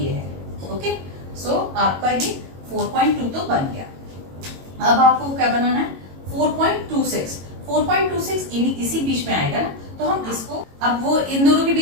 है, ओके। सो आपका ये 4.2 तो बन गया। अब आपको क्या बनाना है? 4.26। 4.26 इसी बीच में आएगा ना, तो हम इसको, अब वो इन दोनों के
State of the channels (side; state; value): left; late; 22 ms